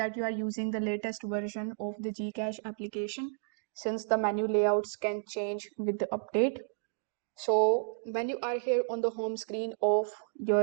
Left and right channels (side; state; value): left; silent; digital silence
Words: you are using the latest version of the GCash application since the menu layouts can change with the update. So when you are here on the home screen of